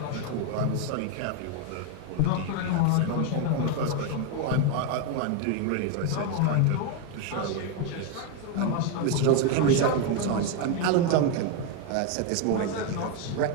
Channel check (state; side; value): different; both; correlation 0.01